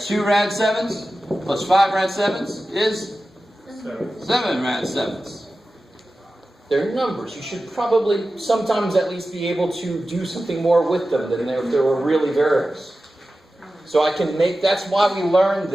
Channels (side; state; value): both; normal; correlation 0.94